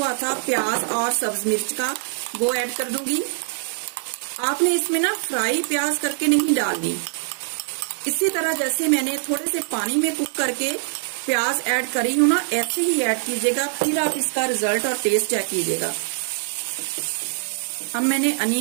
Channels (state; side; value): silent; left; 63 dB below the other